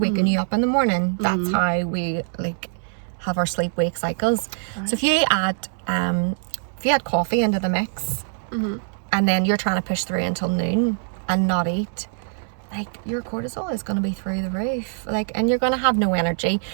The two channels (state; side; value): silent; left; 58 dB below the other